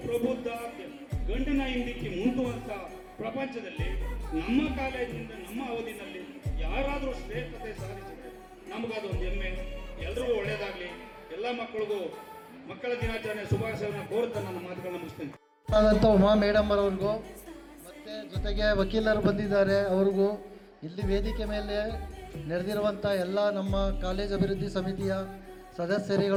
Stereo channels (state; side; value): identical; both; correlation 1.00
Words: ಪ್ರಬುದ್ಧ ಗಂಡನ ಹಿಂದಿಕ್ಕಿ ಮುಂದುವಂತ ಪ್ರಪಂಚದಲ್ಲಿ ನಮ್ಮ ಕಾಲೇಜಿನಿಂದ ನಮ್ಮ ಅವಧಿನಲ್ಲಿ ಯಾರಾದರೂ ಶ್ರೇಷ್ಠತೆ ಸಾಧಿಸಿದ್ರೆ ನಮಗದೊಂದು ಹೆಮ್ಮೆ. ಎಲ್ಲರಿಗೂ ಒಳ್ಳೇದಾಗ್ಲಿ. ಎಲ್ಲ ಮಕ್ಕಳಿಗೂ ಮಕ್ಕಳ ದಿನಾಚರಣೆ ಶುಭಾಶಯವನ್ನು ಕೋರುತ್ತಾ ನನ್ನ ಮಾತುಗಳನ್ನ ಮುಗಿಸ್ತೇನೆ. ಉಮಾ ಮೇಡಮ್ ಅವ್ರಿಗೂ ಮತ್ತು ಜೊತೆಗೆ ವಕೀಲರು ಬಂದಿದ್ದಾರೆ ಅವ್ರಿಗೂ, ಇಲ್ಲಿ ವೇದಿಕೆ ಮೇಲೆ ನಡೆದಿರುವಂಥ ಎಲ್ಲ ನಮ್ಮ ಕಾಲೇಜ್ ಅಭಿವೃದ್ಧಿ ಸಮಿತಿಯ